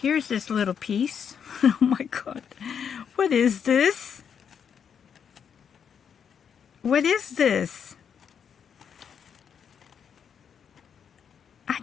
this little piece. Oh my god. What is this? What is this? I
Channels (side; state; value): right; quieter; 7.5 dB